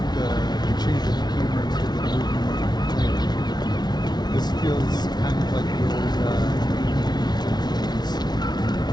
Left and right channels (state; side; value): late; right; 0.20 ms